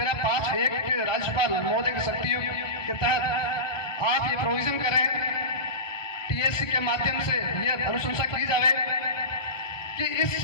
5(1) के राज्यपाल महोदय की शक्तियों के तहत आप ये प्रोविजन करें, टीएससी के माध्यम से ये अनुशंसा की जाए कि इस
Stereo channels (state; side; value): late; right; 1.2 ms